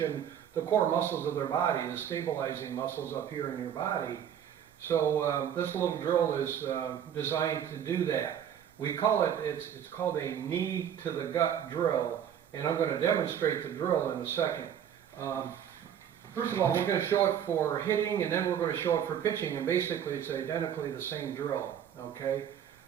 the core muscles of their body, the stabilizing muscles up here in your body. So this little drill is designed to do that. We call it, it's called a knee to the gut drill, and I'm going to demonstrate the drill in a second. First of all, we're going to show it for hitting, and then we're going to show it for pitching, and basically it's identically the same drill, okay?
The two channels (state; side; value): quieter; left; 9.2 dB